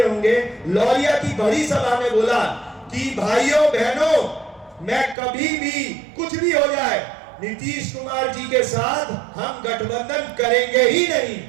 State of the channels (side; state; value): left; drops out; at 5.2 s